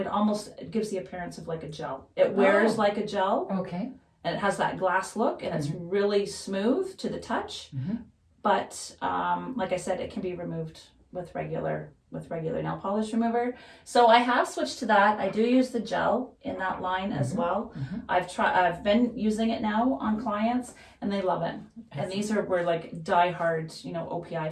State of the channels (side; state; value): both; identical; correlation 1.00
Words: gives the appearance of like a gel. It wears like a gel. Okay. And it has that glass look, and it's really smooth to the touch. But like I said, it can be removed with regular nail polish remover. So I have switched to that. I do use the gel in that line as well. I've been using it now on clients, and they love it. And these were like diehard, OPI